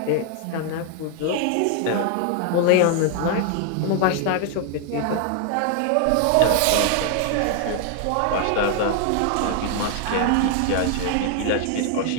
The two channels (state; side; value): different; both; correlation 0.00